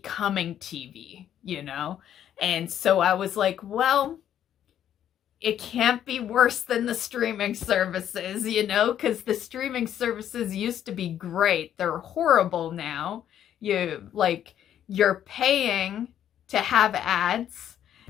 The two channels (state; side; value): quieter; right; 10.4 dB